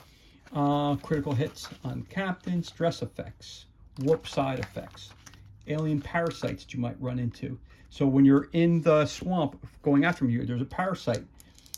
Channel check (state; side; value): identical; both; correlation 1.00